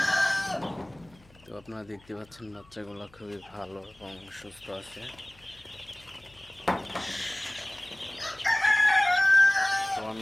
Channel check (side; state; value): left; noise; hum, 27 dB below the sound